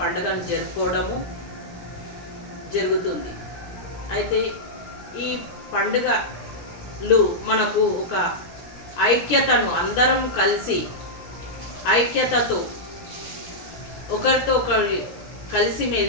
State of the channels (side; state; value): right; late; 17 ms